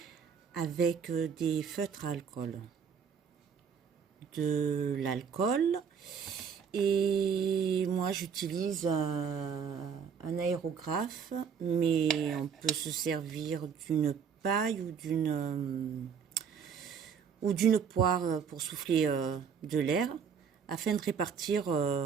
avec des feutres à alcool. De l'alcool et moi j'utilise un aérographe, mais on peut se servir d'une paille ou d'une poire pour souffler de l'air afin de répartir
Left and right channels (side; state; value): left; quieter; 6.8 dB